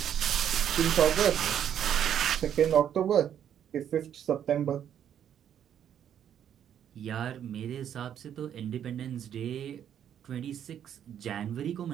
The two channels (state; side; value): quieter; left; 9.5 dB